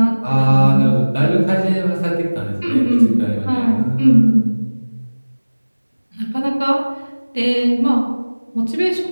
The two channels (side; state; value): both; inverted; correlation -1.00